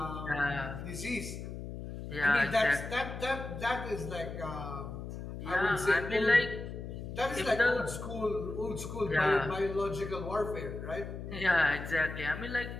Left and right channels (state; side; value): noise; left; hum, 8 dB below the sound